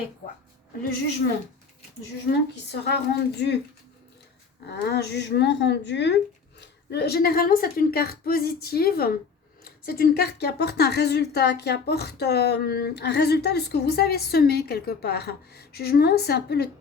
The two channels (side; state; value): right; quieter; 5.4 dB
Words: quoi? Le jugement. Le jugement qui sera rendu. Un jugement rendu. Généralement, c'est une carte positive. C'est une carte qui apporte un résultat, qui apporte un résultat de ce que vous avez semé quelque part. Jugement, c'est un peu le